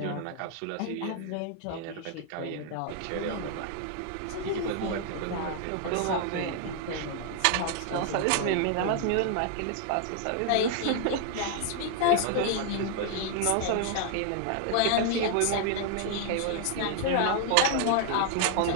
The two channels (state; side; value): different; both; correlation 0.00